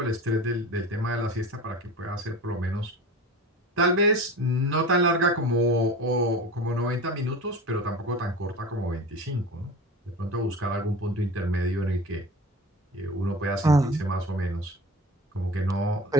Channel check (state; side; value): normal; both; correlation 0.34